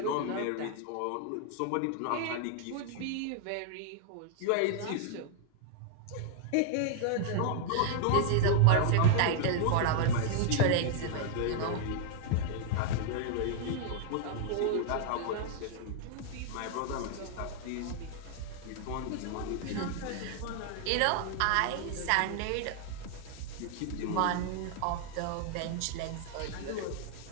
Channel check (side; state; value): both; different; correlation 0.00